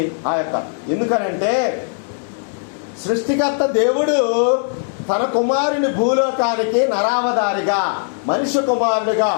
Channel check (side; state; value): right; silent; 66 dB below the other